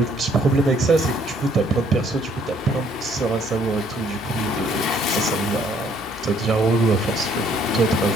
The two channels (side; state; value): both; normal; correlation 0.63